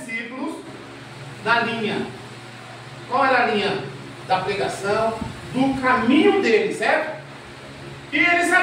na linha. Qual era a linha? Da pregação, do caminho dele, certo? E ele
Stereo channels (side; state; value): both; identical; correlation 1.00